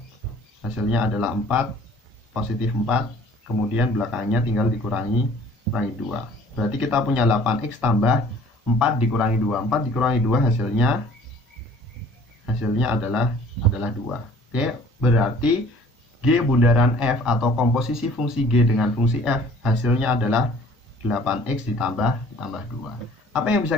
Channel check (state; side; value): normal; both; correlation 0.53